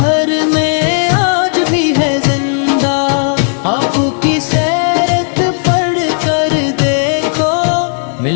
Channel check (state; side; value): silent; right; digital silence